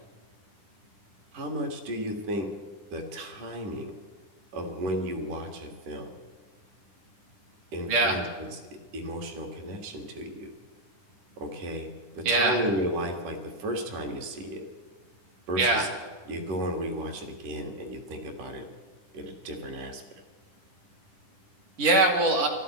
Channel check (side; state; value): left; late; 10 ms